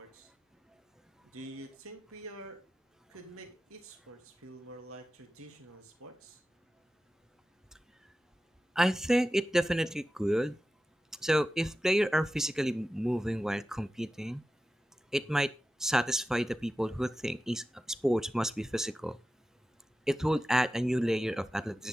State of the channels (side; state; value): both; normal; correlation 0.94